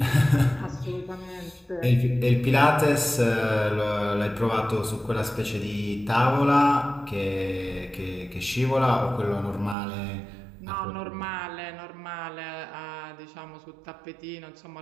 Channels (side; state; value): left; drops out; at 9.8 s